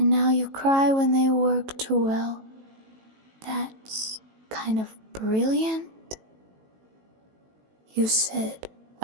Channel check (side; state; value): left; late; 18 ms